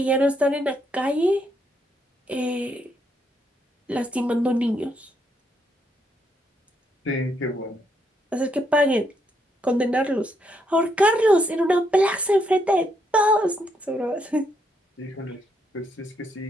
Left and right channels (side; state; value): both; normal; correlation 0.76